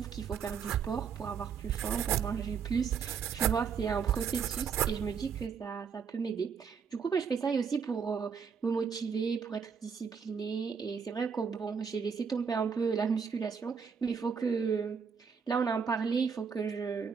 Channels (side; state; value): left; quieter; 6.4 dB